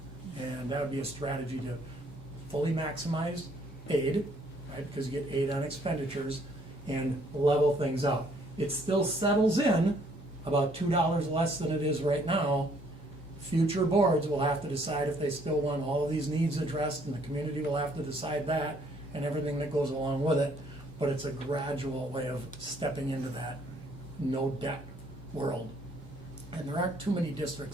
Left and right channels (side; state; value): both; normal; correlation 0.64